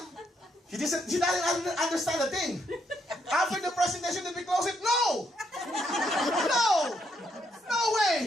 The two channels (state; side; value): normal; both; correlation 0.76